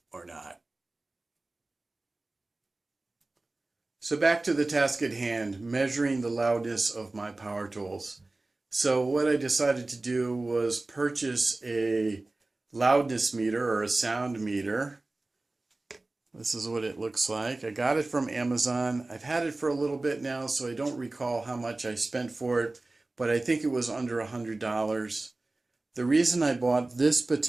or not. So back to the task at hand, measuring the loudness of my power tools. So what I decided to do was purchase a loudness meter or a sound meter. This is what it looks like. I got it from Amazon. I've had it for a little bit now, so I don't recall how much I spent for it, but I think it was under $100. The reason I bought this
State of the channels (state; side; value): quieter; left; 3.0 dB